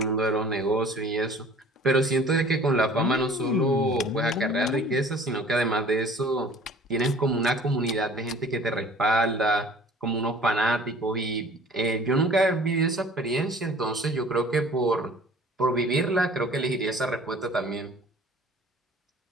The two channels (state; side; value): normal; both; correlation 0.49